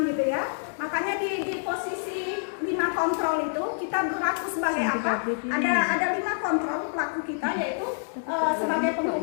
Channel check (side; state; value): right; silent; digital silence